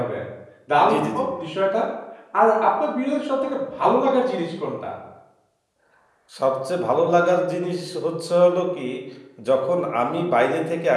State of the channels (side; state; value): both; identical; correlation 1.00